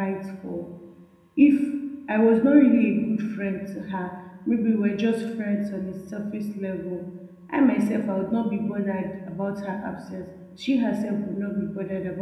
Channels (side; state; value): both; identical; correlation 1.00